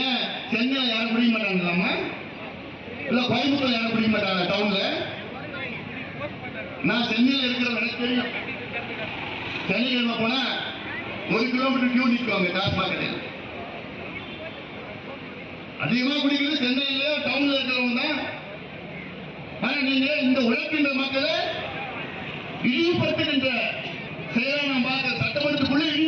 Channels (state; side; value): identical; both; correlation 1.00